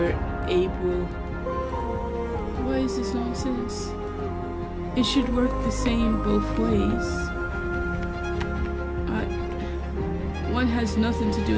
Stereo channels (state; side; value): identical; both; correlation 1.00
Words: able. Why is this nonsense? It should work the same both ways. One has nothing to do